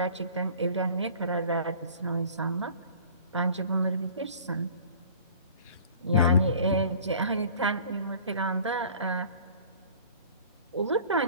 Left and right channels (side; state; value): both; inverted; correlation -0.47